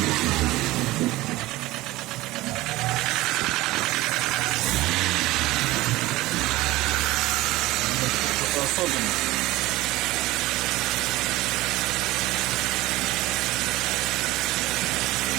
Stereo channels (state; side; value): quieter; left; 18.4 dB